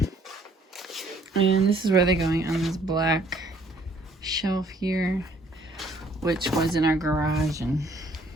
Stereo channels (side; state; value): both; normal; correlation 0.62